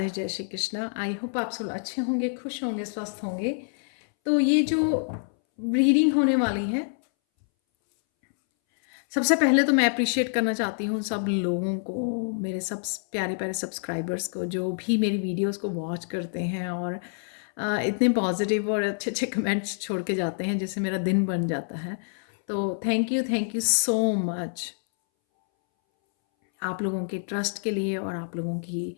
जय श्री कृष्णा। आई होप आप सब अच्छे होंगे, खुश होंगे, स्वस्थ होंगे। तो ये जो रीडिंग होने वाली है, सबसे पहले तो मैं अप्रिशिएट करना चाहती हूँ सब लोगों को, मेरे सब प्यारे प्यारे सब्सक्राइबर्स को, जो भी मेरी वीडियोस को वॉच करते हैं और इतने पॉजिटिव और अच्छे अच्छे कमेंट्स छोड़ के जाते हैं, जिससे मेरा दिन बन जाता है। तो थैंक यू सो मच आप लोगों के ट्रस्ट के लिए और आप लोगों की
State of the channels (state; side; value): silent; right; 60 dB below the other